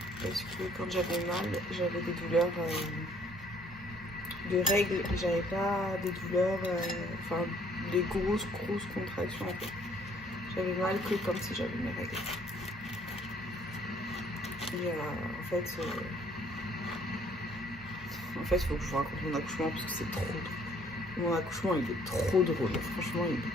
Parce que quand j'avais mal, j'avais des douleurs de règles, j'avais pas des douleurs, enfin des grosses contractions en fait. J'avais mal que comme si j'avais mes règles. Et en fait, il faut que je vous raconte mon accouchement parce que c'est trop drôle. Mon accouchement, il est trop drôle. Franchement, il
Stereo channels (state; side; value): normal; both; correlation 0.61